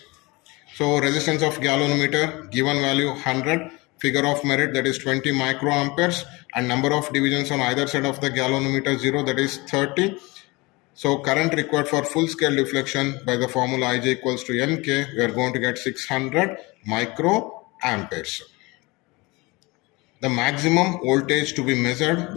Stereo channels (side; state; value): right; quieter; 24.3 dB